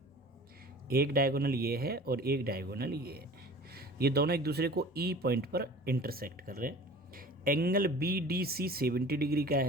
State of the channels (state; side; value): normal; both; correlation 0.43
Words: एक डायगोनल ये है और एक डायगोनल ये है, ये दोनों एक दूसरे को E पॉइंट पर इंटरसेक्ट कर रहे हैं। एंगल BDC 70 डिग्री का